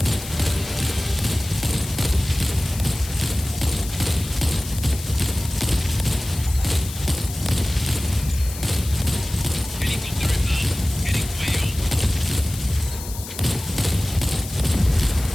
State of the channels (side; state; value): left; noise; hiss, 12 dB below the sound